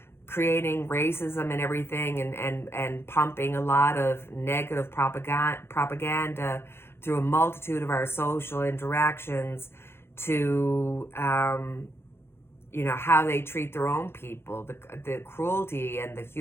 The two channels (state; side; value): late; right; 0.12 ms